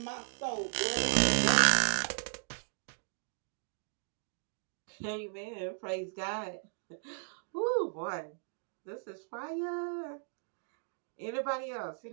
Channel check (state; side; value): silent; left; digital silence